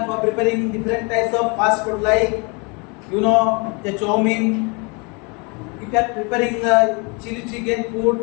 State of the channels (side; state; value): right; quieter; 31.0 dB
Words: for preparing different types of fast food like, the chow-mein. If you are preparing chili chicken